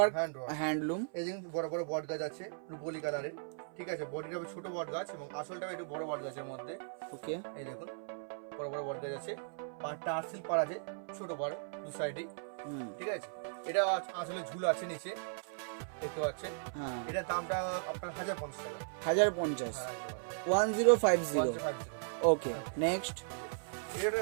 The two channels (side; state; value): left; silent; 53 dB below the other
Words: hand work। হ্যান্ডলুম। এই যে বড় বড় বট গাছ আছে রুপোলি কালারের, ঠিক আছে। বডিটা হবে ছোট বট গাছ এবং আসলটা একটু বড় বট গাছের মধ্যে। ওকে এই দেখুন বড় বড় বট গাছ আছে, পাড়টা আরসিল পাড় আছে, ছোট পাড় দু সাইডে, ঠিক আছে। এটা আসলে ঝুল আছে নিচে, দেখতে পাচ্ছেন। হ্যাঁ এটার দামটা আপনার 1050 টাকা। 1050। হ্যাঁ 1050। 1050। ওকে নেক্সট